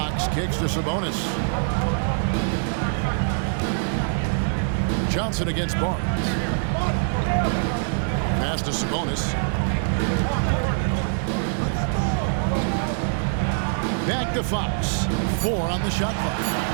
kicks to Sabonis. Johnson against Barnes. Pass to Sabonis. Back to Fox. 4 on the shot clock.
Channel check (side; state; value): left; silent; digital silence